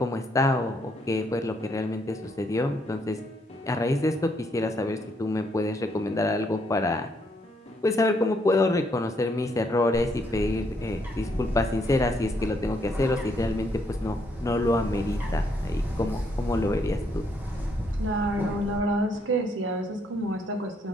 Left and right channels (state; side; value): normal; both; correlation 0.73